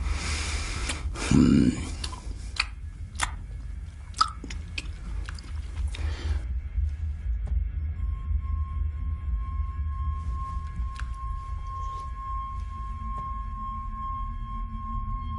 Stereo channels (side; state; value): both; identical; correlation 1.00